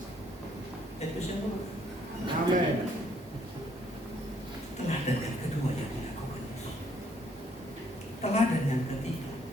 Itu siapa? Amin. Teladan yang kedua yang dilakukan Yesus. Teladan yang ketiga.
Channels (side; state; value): both; normal; correlation 0.67